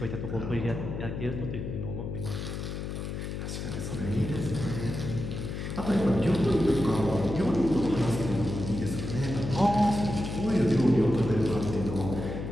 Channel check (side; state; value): left; noise; hum, 5 dB below the sound